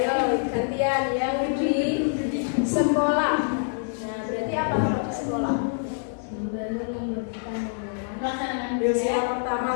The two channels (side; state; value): right; silent; digital silence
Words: gantian yang di sekolah. Nah, berarti apa kalau di sekolah? Sila pertama